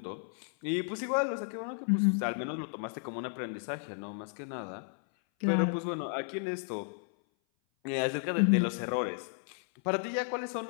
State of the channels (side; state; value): right; silent; 56 dB below the other